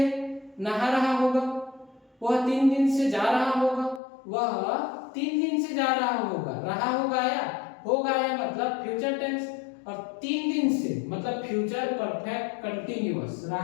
नहा रहा होगा, वह 3 दिन से जा रहा होगा, वह 3 दिन से जा रहा होगा, रहा होगा या मतलब फ्यूचर टेंस, और 3 दिन से मतलब फ्यूचर परफेक्ट कंटीन्यूअस,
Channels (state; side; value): drops out; right; at 4.0 s